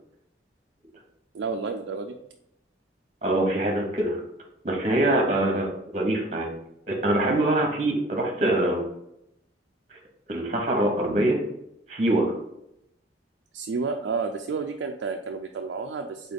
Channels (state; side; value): normal; both; correlation 0.46